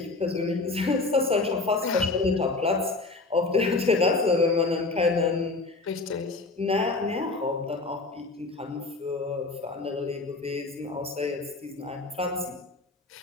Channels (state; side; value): quieter; right; 3.5 dB